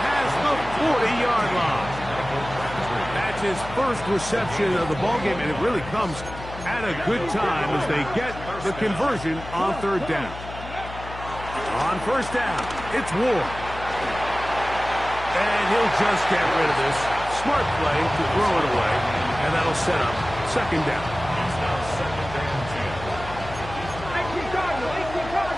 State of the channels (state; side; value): noise; left; hum, 12 dB below the sound